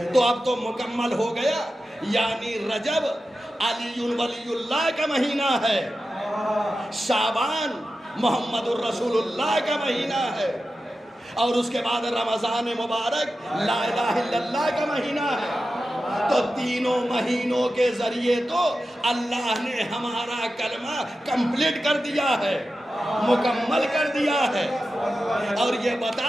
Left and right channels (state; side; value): normal; both; correlation 0.92